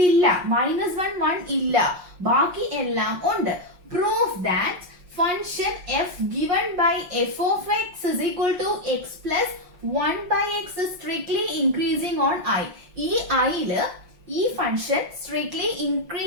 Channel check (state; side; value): late; left; 5.5 ms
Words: -1 1 ഇല്ല, ബാക്കി എല്ലാം ഉണ്ട്. Proof that function f given by f of x is equal to x plus 1 by x is strictly increasing on I. ഈ I-ല് ഈ ഫംഗ്ഷൻ സ്ട്രിക്ട്ലി